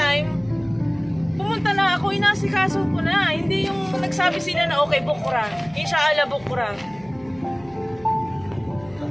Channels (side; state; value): right; noise; hum, 24 dB below the sound